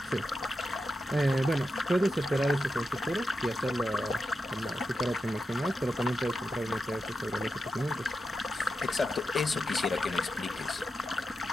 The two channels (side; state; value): both; normal; correlation 0.88